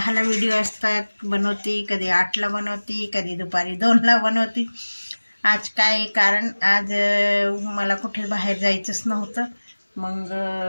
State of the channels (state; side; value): inverted; both; correlation -1.00